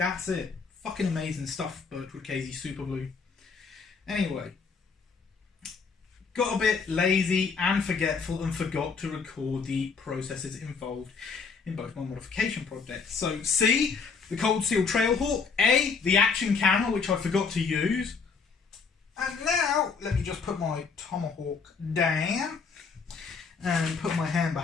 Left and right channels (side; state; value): right; quieter; 5.2 dB